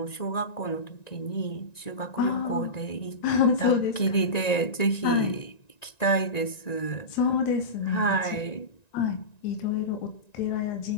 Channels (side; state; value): right; late; 1.9 ms